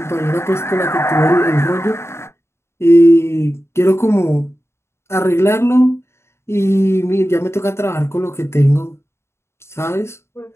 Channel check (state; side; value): late; right; 0.13 ms